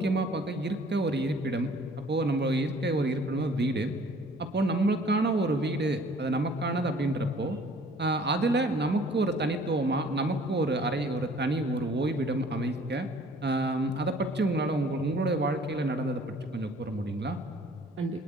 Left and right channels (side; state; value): both; normal; correlation 0.54